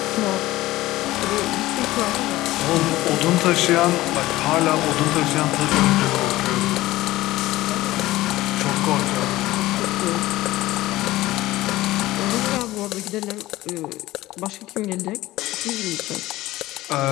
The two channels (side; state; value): right; quieter; 17.1 dB